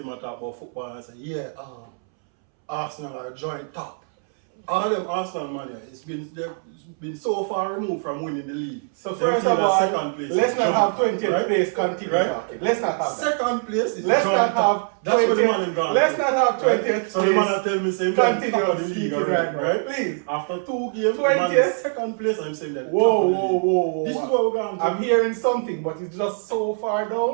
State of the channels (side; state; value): left; silent; 63 dB below the other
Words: might talk about football and say, Arsenal are joint top. All them Arsenal money, they've been so far removed from winning the league. So first of all, let's not have 20th place continue right? talking. Let's not have that. Second place is let's not have that's 20th, what the man in gone. Let's not have 20th place. So the man tell me same continue top of the league speaking already, right? Please. After 2 games, 20th? man is second place, I'm saying that. Whoa. This is what we're going to I'm hearing something, but it's just so far